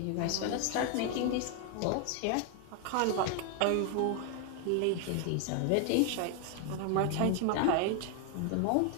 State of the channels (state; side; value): different; both; correlation 0.01